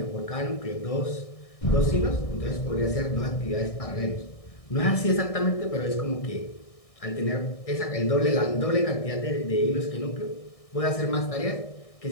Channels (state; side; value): late; right; 1.6 ms